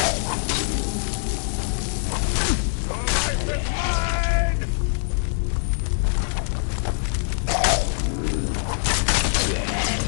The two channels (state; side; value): silent; right; 58 dB below the other